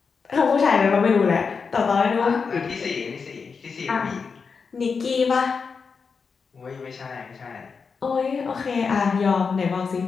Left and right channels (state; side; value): quieter; right; 5.4 dB